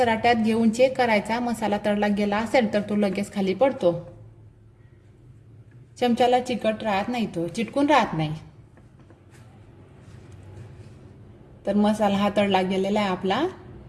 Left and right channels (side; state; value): both; identical; correlation 1.00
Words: घेऊन चेक करायचा. मसाला तळला गेला असेल तर तो लगेच खाली पडतो. चमच्याला चिकट राहत नाही, तो चिटकून राहत नाही. तर मसाला हा तळला गेलेला आहे आपला.